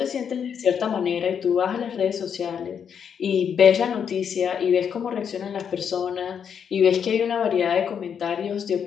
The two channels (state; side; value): quieter; right; 7.6 dB